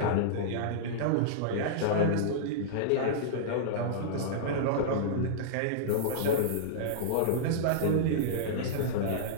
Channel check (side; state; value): both; different; correlation -0.02